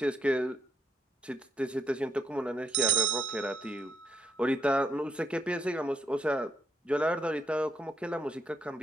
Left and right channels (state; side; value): normal; both; correlation 0.74